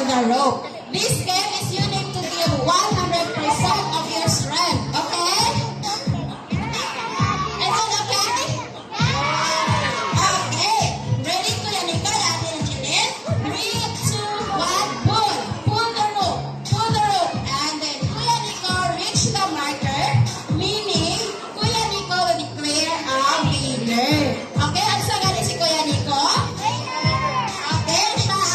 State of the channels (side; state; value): both; identical; correlation 1.00